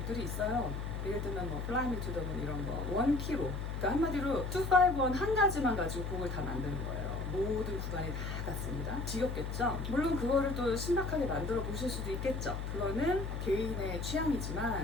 있어요. 예를 들면 뭐 Fly Me to the Moon 이런 거 원키로, 그러니까 한마디로 251 한 가지만 가지고 곡을 다 만드는 거예요. 모든 구간이 다 같습니다. 지겹겠죠? 물론 그거를 또 신박하게 만들어 보실 수도 있겠죠. 그거는 개인의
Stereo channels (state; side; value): noise; left; hum, 4 dB below the sound